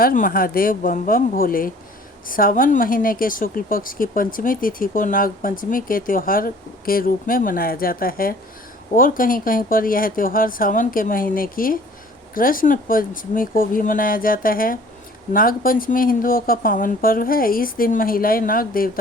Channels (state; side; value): normal; both; correlation 0.51